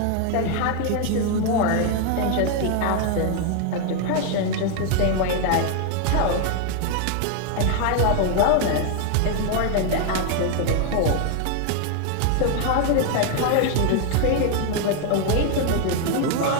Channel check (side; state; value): both; different; correlation 0.01